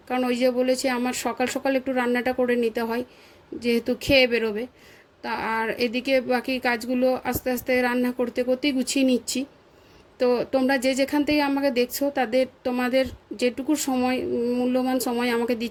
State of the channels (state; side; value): identical; both; correlation 1.00